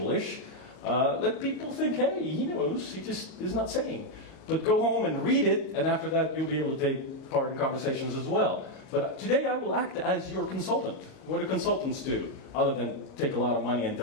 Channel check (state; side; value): late; right; 38 ms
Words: Let people think, hey, he knows, he just is not saying. But go home and read it, and after that you'll be able to take part in conversations as well. But today I will act as your consultant. What do consultants do? Other than take a lot of money and